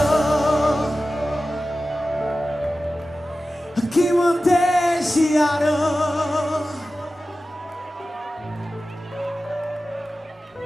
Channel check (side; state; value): both; normal; correlation 0.94